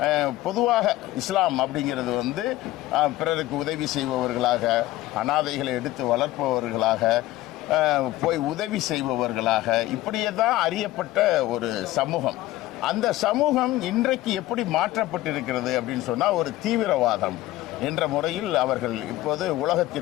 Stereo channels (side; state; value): right; quieter; 16.4 dB